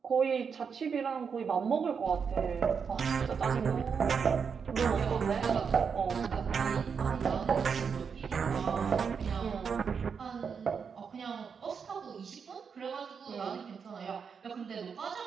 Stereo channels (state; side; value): quieter; left; 6.2 dB